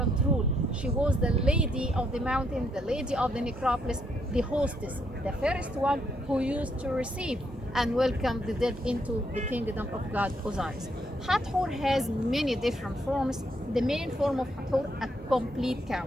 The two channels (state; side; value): normal; both; correlation 0.75